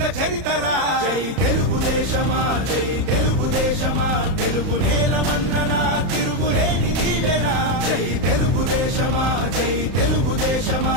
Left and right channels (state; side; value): late; left; 31 ms